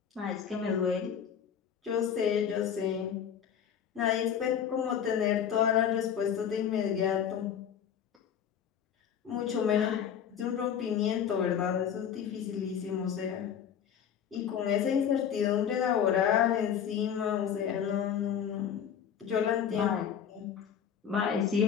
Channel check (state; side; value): quieter; right; 8.3 dB